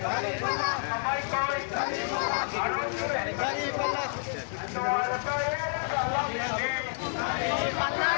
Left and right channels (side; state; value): right; silent; digital silence